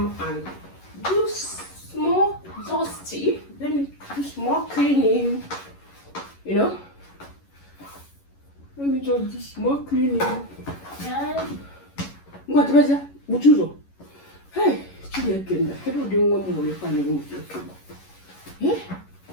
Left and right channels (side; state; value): right; late; 11 ms